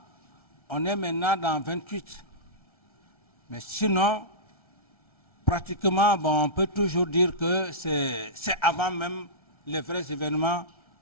on est maintenant dans 28. Mais sinon, pratiquement, bon, on peut toujours dire que c'est avant même les vrais événements.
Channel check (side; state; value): right; late; 1.3 ms